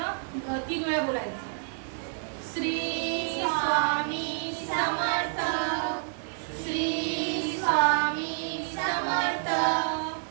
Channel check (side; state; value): left; silent; digital silence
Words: 3 वेळा बोलायचं. श्री स्वामी समर्थ, श्री स्वामी समर्थ,